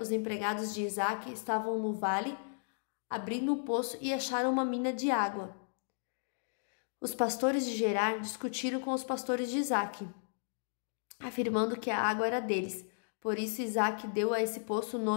os empregados de Isaque estavam no vale, abrindo um poço e acharam uma mina de água. Os pastores de Gerar discutiram com os pastores de Isaque, afirmando que a água era deles. Por isso Isaque deu a esse poço o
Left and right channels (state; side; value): silent; right; digital silence